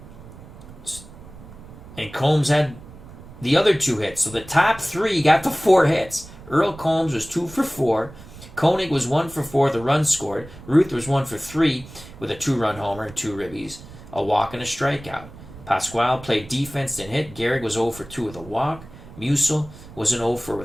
And Combs had the other 2 hits. So the top 3 got the 4 hits. Earl Combs was 2 for 4. Koenig was 1 for 4, the run scored. Ruth was 1 for 3 with a 2-run homer and 2 ribbies, a walk and a strikeout. Pasquale played defense and hit. Gehrig was 0 for 2 with a walk. Musil was an 0 for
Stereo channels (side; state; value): right; noise; rumble, 17 dB below the sound